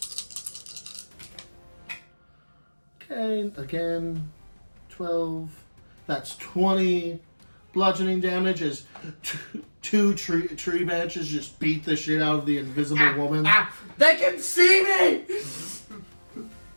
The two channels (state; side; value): inverted; both; correlation -1.00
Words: Okay, again, 12. That's 20 bludgeoning damage as two tree branches just beat the shit out of the invisible woman. They can see me!